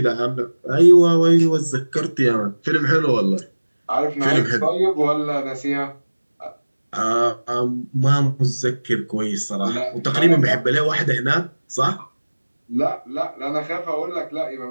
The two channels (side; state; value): both; inverted; correlation -1.00